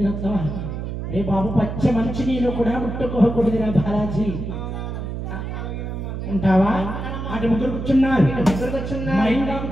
రే బాబు పచ్చ మంచి నీళ్ళు కూడా ముట్టుకోకూడదురా బాలాజీ ఉంటావా అటు ముగ్గురు కూర్చున్నారు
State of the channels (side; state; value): right; noise; hum, 5 dB below the sound